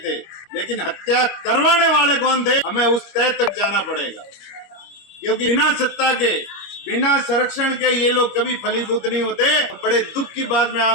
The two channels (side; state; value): right; late; 25 ms